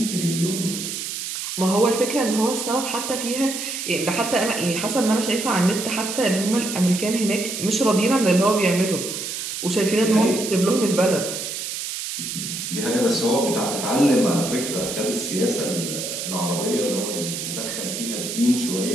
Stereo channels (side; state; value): right; noise; hiss, 5 dB below the sound